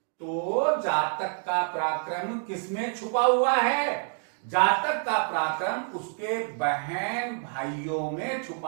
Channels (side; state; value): left; silent; 60 dB below the other